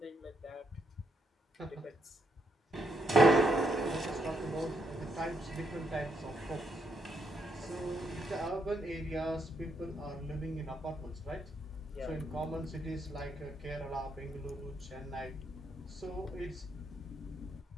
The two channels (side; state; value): both; normal; correlation 0.77